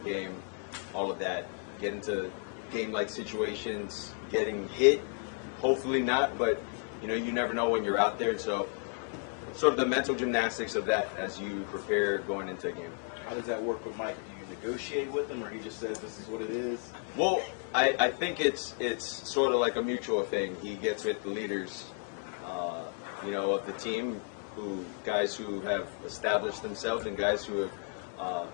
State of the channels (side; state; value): right; quieter; 36.7 dB